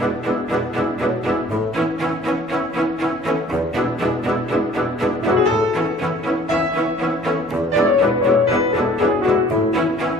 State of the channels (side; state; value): both; normal; correlation 0.54